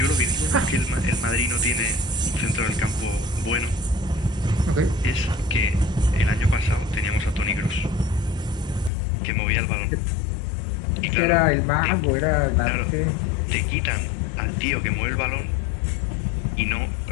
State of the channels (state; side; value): drops out; right; at 8.9 s